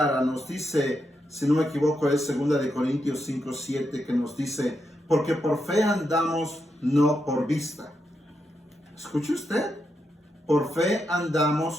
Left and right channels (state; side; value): normal; both; correlation 0.84